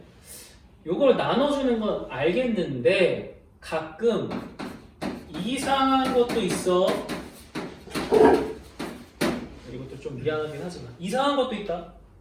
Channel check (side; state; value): both; identical; correlation 1.00